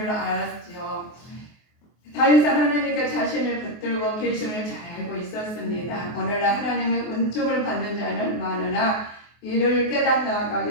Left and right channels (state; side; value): late; right; 24 ms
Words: 알았죠. 다윗은 하나님께 자신을 붙들고 계심을 잘 알고 있었습니다. 오늘날 하나님의 은총을 받는 자는 많으나 이를 깨닫는